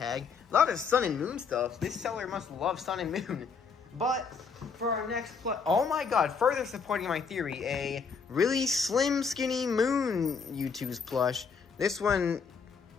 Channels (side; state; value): right; quieter; 5.5 dB